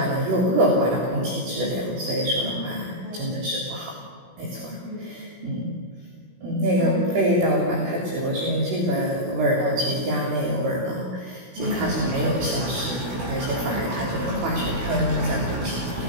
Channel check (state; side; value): late; left; 16 ms